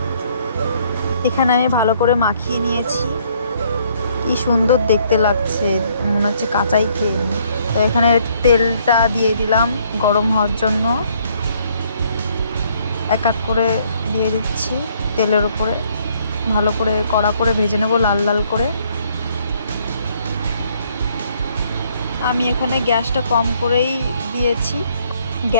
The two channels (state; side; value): inverted; both; correlation -0.66